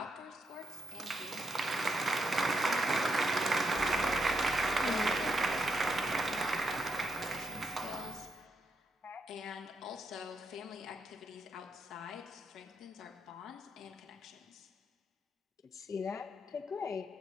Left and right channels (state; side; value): normal; both; correlation 0.82